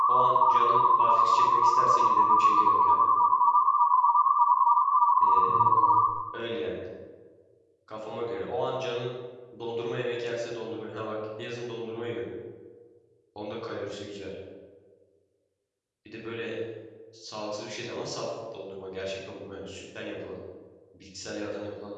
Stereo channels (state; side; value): identical; both; correlation 1.00